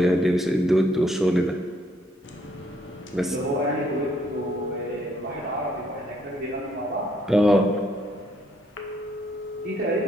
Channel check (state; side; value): normal; both; correlation 0.69